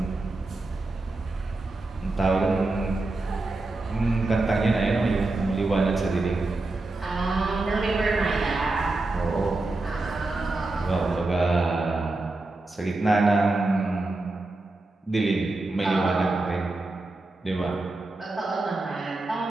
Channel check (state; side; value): quieter; left; 3.1 dB